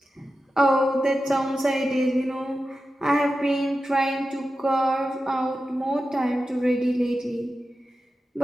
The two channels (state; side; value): normal; both; correlation 0.92